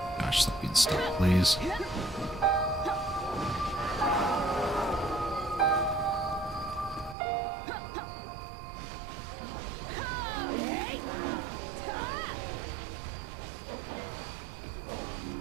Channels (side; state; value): left; drops out; at 7.2 s